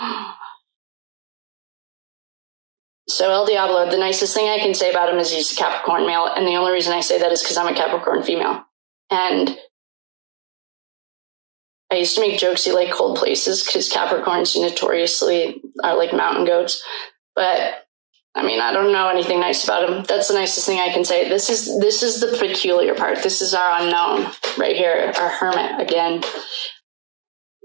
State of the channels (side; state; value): left; silent; digital silence